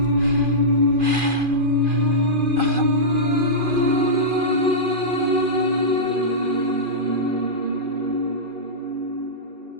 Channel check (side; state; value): left; late; 2.4 ms